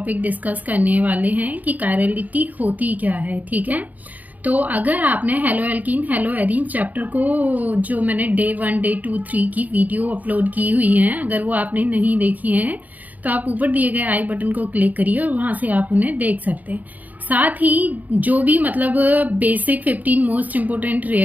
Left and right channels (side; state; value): left; late; 0.078 ms